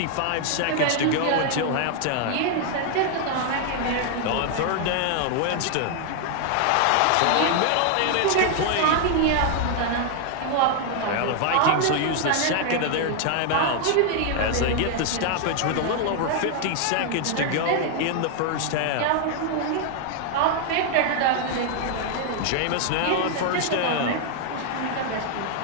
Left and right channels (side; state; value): both; different; correlation 0.00